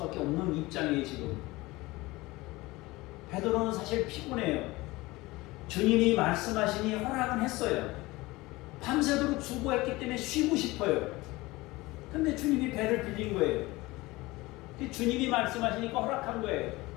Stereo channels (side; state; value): right; quieter; 20.9 dB